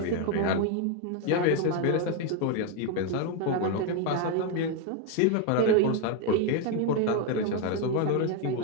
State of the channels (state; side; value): different; both; correlation 0.01